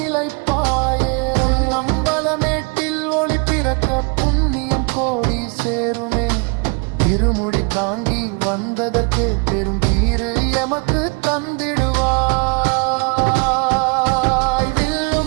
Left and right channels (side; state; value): left; quieter; 33.9 dB